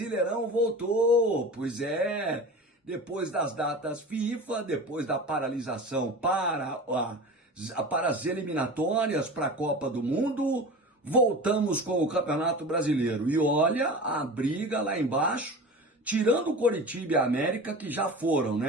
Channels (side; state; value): both; normal; correlation 0.33